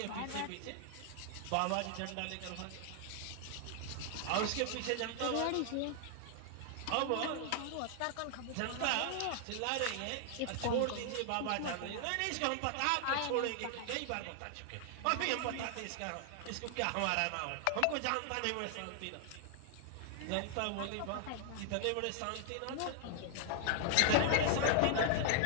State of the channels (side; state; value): both; different; correlation 0.00